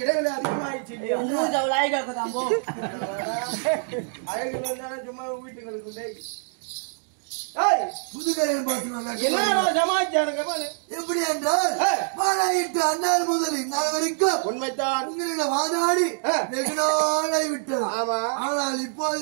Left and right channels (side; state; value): left; silent; digital silence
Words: இடைவெளி அதிகமாயிடுச்சு இல்லையா அழகு சும்மா வீட்டுங்களுக்கு புதுக்கரையில் பார்த்து என்ன சமாச்சாரம் எப்படி என்றால் மாநாயிட்டு அந்நாள் முதல் இந்நாள் வரைக்கும் உண்மைத்தான் உங்களிடம் வாதாடி வெகு நாளாய் விட்டது. ஆமா. ஆனால் இப்போது